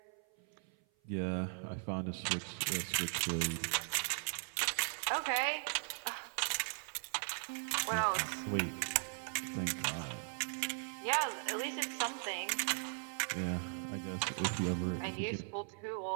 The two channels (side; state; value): left; silent; 52 dB below the other